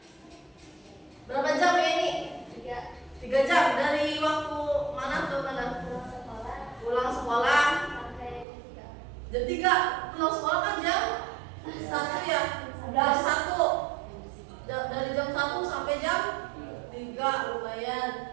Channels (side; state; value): left; drops out; at 8.5 s